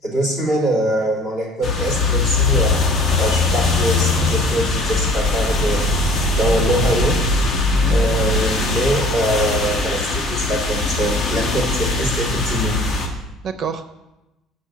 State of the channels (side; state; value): both; normal; correlation 0.50